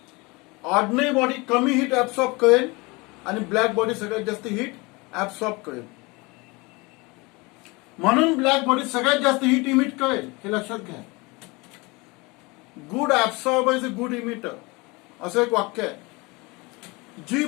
ऑर्डिनरी बॉडी कमी हीट ऍब्सॉर्ब करेल आणि ब्लॅक बॉडी सगळ्यात जास्त हीट ऍब्सॉर्ब करेल. म्हणून ब्लॅक बॉडी सगळ्यात जास्त हीट इमिट करेल. हे लक्षात घ्या. Good absorber is a good emitter असं एक वाक्य आहे. जी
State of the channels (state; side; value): quieter; right; 25.6 dB